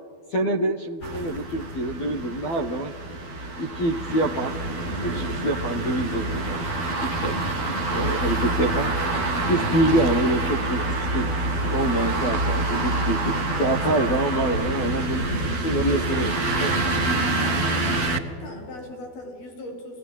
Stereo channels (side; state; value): right; late; 12 ms